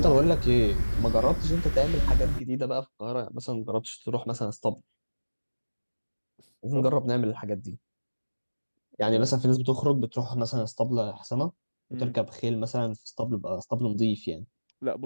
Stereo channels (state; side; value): inverted; both; correlation -1.00